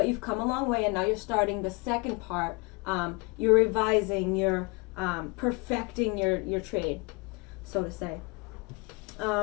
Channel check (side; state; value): right; quieter; 28.9 dB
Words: you've come a long way, and now you're starting the second part. You're revising, you're perfecting your trade, so to say.